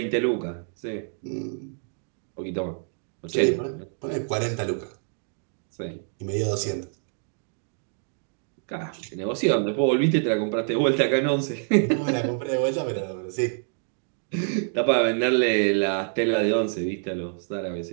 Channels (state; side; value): silent; left; digital silence